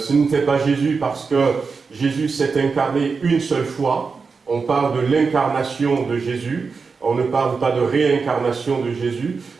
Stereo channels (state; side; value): quieter; left; 4.9 dB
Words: n'était pas Jésus parce que Jésus s'est incarné une seule fois. On parle de l'incarnation de Jésus. On ne parle pas de réincarnation de Jésus,